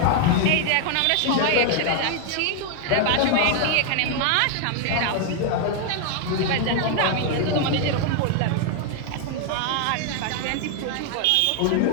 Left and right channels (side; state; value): both; different; correlation 0.00